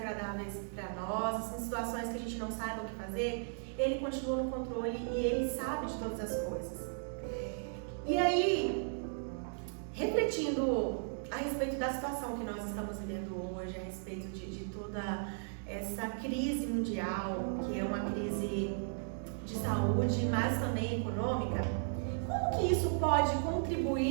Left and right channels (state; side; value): silent; left; digital silence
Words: para nós, em situações que a gente não saiba o que fazer, Ele continua no controle e Ele sabe de todas as coisas. E aí, refletindo a respeito da situação que nós estamos vivendo hoje, a respeito de toda essa crise mundial, que é uma crise de saúde, mas também econômica, como que isso pode